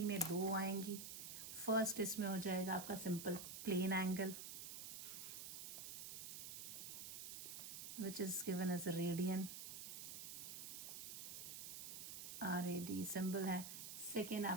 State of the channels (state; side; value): noise; right; hiss, 7 dB below the sound